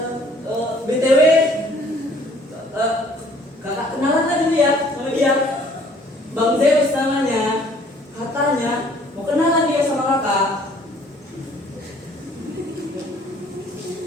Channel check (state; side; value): normal; both; correlation 0.57